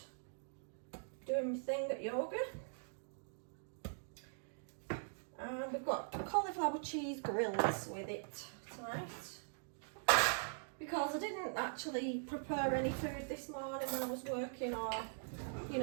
doing my thing at yoga. And we've got cauliflower cheese grills with it tonight. Because I didn't actually prepare any food this morning when I was working, or, you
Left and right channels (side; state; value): left; silent; digital silence